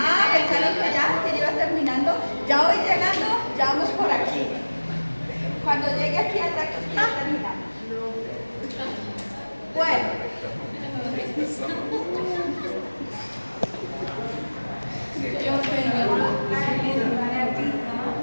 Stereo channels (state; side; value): inverted; both; correlation -1.00